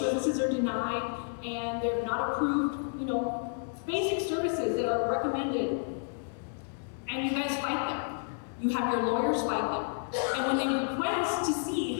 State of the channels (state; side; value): silent; right; digital silence